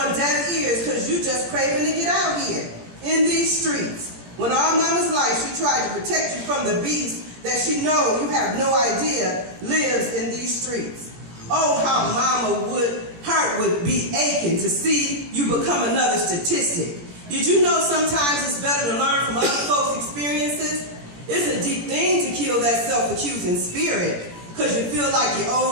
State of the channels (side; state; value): left; late; 17 ms